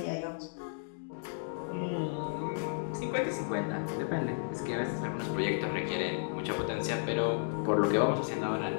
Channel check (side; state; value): right; silent; digital silence